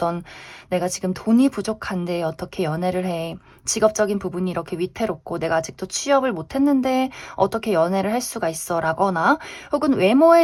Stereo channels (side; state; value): both; identical; correlation 1.00